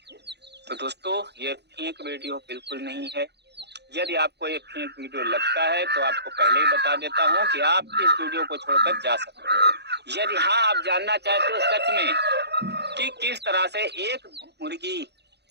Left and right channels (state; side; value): late; left; 0.49 ms